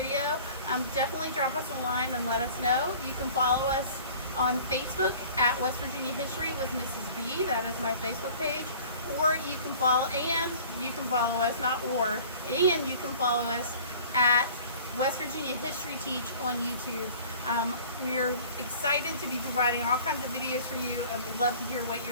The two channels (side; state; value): both; inverted; correlation -0.47